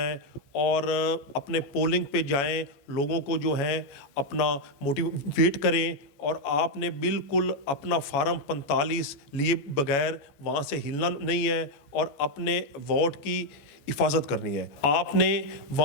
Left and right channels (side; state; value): right; late; 14 ms